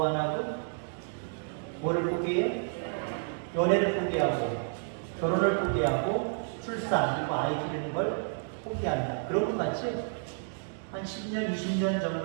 하나고? 뭐를 포기해? 연애를 포기하고, 결혼을 포기하고, 출산, 그리고 아이 기르는 걸 포기한다. 그런 것 같지? 한 10년, 20년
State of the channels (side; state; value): left; silent; 57 dB below the other